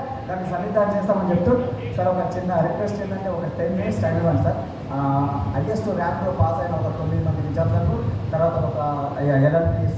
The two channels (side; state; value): both; identical; correlation 1.00